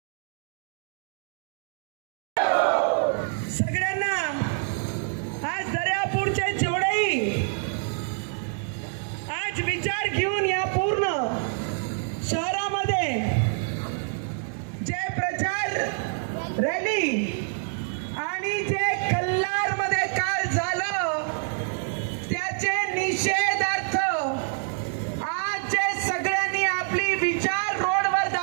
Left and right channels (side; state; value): left; silent; 57 dB below the other